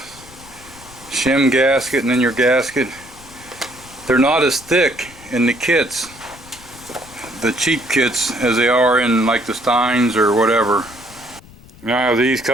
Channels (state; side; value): noise; left; rumble, 22 dB below the sound